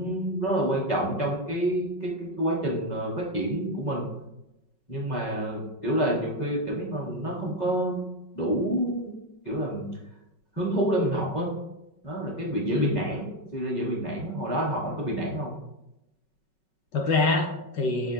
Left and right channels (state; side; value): late; right; 5.4 ms